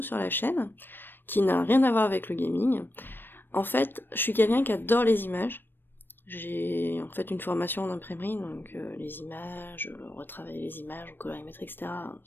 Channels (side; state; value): right; late; 0.096 ms